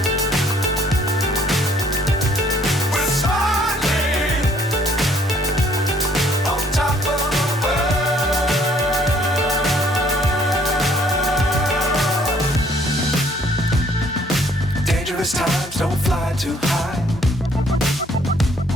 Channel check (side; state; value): both; normal; correlation 0.62